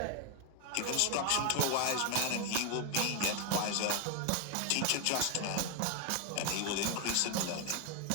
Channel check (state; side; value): different; both; correlation 0.00